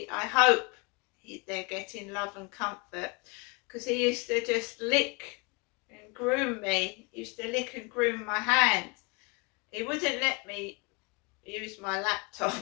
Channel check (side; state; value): right; quieter; 30.4 dB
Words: I hope they're getting love and comfort, because he used to just lick and groom me. He used to lick and groom my hand. He wouldn't let me use my